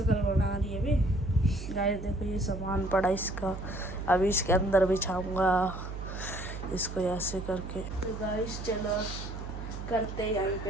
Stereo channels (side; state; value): right; noise; hum, 8 dB below the sound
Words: बना रही है अभी। गाइस देखो ये सामान पड़ा इसका, अभी इसके अंदर बिछाऊंगा इसको ऐसे करके। तो गाइस चलो करते हैं यहाँ